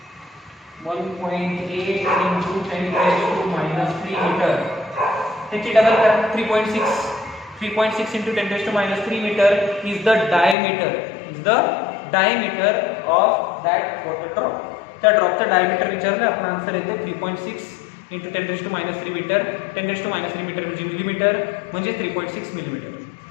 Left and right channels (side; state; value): right; drops out; at 10.6 s